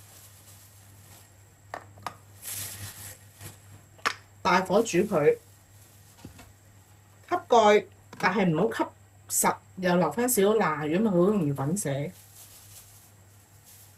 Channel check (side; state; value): both; identical; correlation 1.00